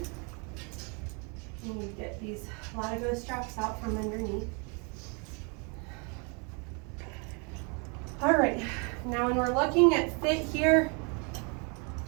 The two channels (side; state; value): left; quieter; 34.2 dB